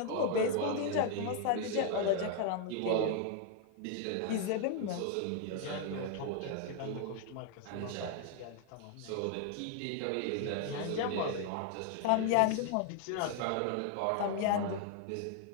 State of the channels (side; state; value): both; different; correlation 0.00